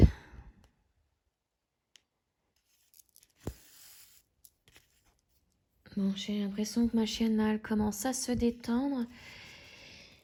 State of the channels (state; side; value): identical; both; correlation 1.00